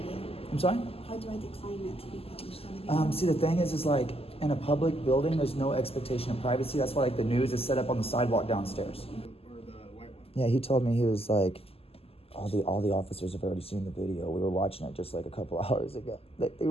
I'm sorry? How do I decline it to be published on the video? See, the thing is like, in a public building, there's no expectation of privacy. That's why, like, the news is set up on the sidewalk downstairs. Or the white one. Yeah, he told me, he was like, all the officers have already seen the video. We were watching it just like a couple hours ago.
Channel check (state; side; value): late; right; 0.28 ms